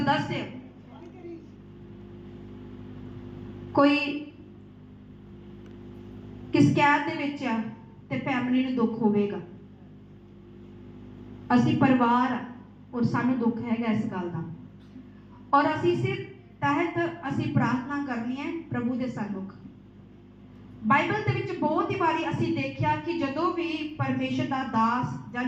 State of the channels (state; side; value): identical; both; correlation 1.00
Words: कोई किस कैद दे विच है ते फैमिली नूं दुख होवेगा। असीं परिवार और सानूं दुख हैगा इस गल दा, और असीं इस तहत असीं प्रार्थना करनी है प्रभु दे सन्मुख। बाइबल दे विच बहुत ही बारी असीं देखिया कि जदों भी परमेश्वर दा दास जां